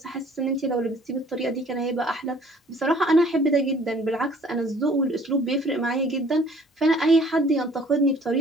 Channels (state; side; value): normal; both; correlation 0.55